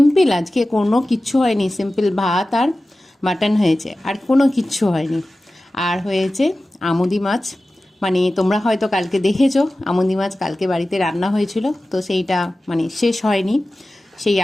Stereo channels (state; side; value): normal; both; correlation 0.95